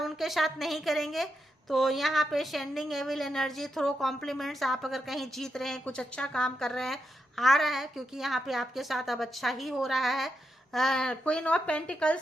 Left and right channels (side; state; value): both; normal; correlation 0.84